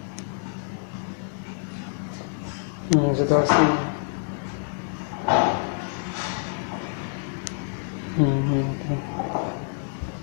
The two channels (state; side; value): silent; right; digital silence